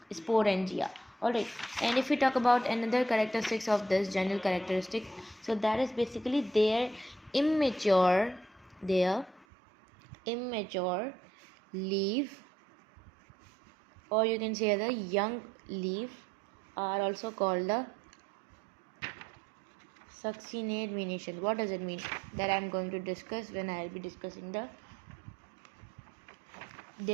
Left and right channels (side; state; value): left; drops out; at 9.5 s